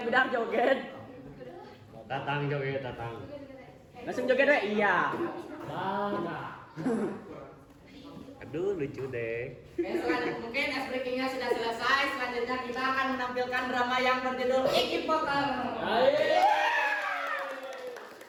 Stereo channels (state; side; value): identical; both; correlation 1.00